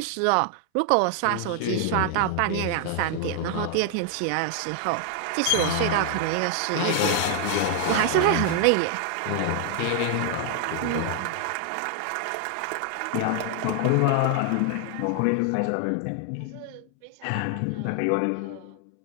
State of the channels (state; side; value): different; both; correlation 0.00